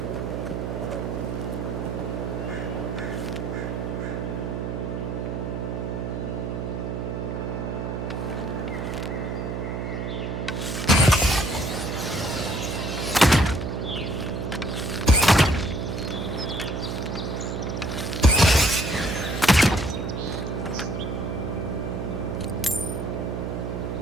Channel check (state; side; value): noise; right; hum, 3 dB below the sound